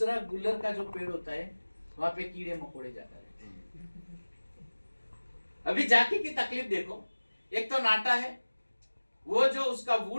गुल्लर का जो पेड़ होता है वहां पे कीड़े मकोड़े जाता रहते हैं। अभी जाकी की तकलीफ देखो, एक तो नाटा है, वो जो उसका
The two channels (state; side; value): inverted; both; correlation -1.00